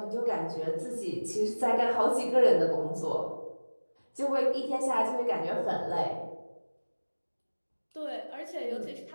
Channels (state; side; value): inverted; both; correlation -1.00